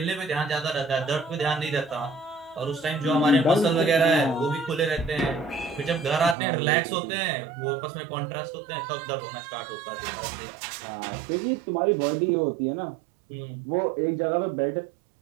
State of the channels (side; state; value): left; drops out; at 6.4 s